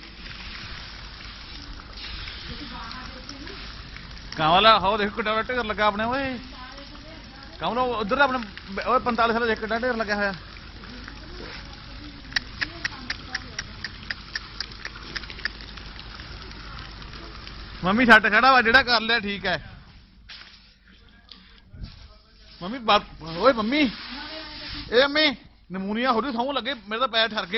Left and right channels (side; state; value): both; identical; correlation 1.00